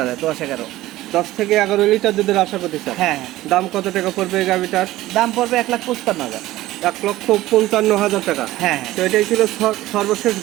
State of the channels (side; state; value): left; quieter; 16.3 dB